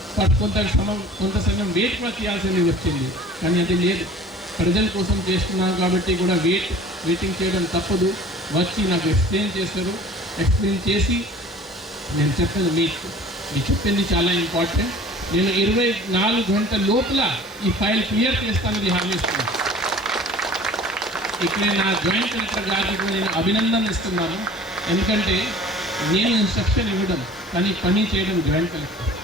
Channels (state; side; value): normal; both; correlation 0.46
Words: కొంత సమయం వెయిట్ కూడా చేయాల్సింది వచ్చింది. కానీ అది లేదు, ప్రజల కోసం చేస్తున్నాను కాబట్టి కూడా వెయిటింగ్ చేయడం తప్పదు. వచ్చి నాకు ఎక్స్ప్లెయిన్ చేశారు. ఎక్స్ప్లెయిన్ చేసి నేను చెప్పేది మీరు చెప్పింది చాలా ఇంపార్టెంట్, నేను 24 గంటల లోపల ఈ ఫైల్ క్లియర్ చేస్తానని హామీ ఇస్తున్నాను. ఇక్కడ నా జాయింట్ కలెక్టర్ గారికి నేను అభినందన ఇస్తున్నాను. ఎందుకంటే నేను ఇన్స్ట్రక్షన్ ఇవ్వడం కానీ పని చేయడం జాయింట్ కలెక్టర్.